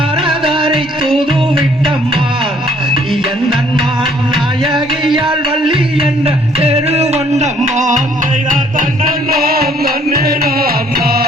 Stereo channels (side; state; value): both; normal; correlation 0.62